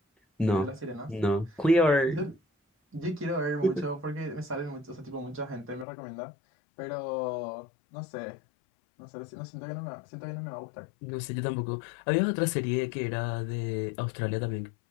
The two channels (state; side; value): drops out; right; at 5.9 s